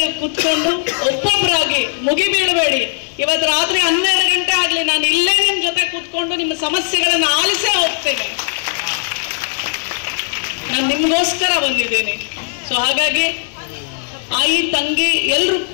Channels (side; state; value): right; silent; digital silence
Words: ಕೂತ್ಕೊಂಡು ಒಬ್ಬೊಬ್ಬರಾಗಿ ಮುಗಿಬೀಳಬೇಡಿ. ಇವತ್ತು ರಾತ್ರಿ 12 ಗಂಟೆ ಆಗಲಿ, ನಾನು ಇಲ್ಲೇ ನಿಮ್ಮ ಜೊತೆ ಕೂತ್ಕೊಂಡು ನಿಮ್ಮ ಸಮಸ್ಯೆಗಳನ್ನು ಆಲಿಸೇ ಹೋಗ್ತೇನೆ. ನಾನು ನಿಮಗೋಸ್ಕರ ಬಂದಿದ್ದೀನಿ. ಸೊ ಹಾಗಾಗಿ ಆಯಿ ತಂಗಿ ಎಲ್ಲರೂ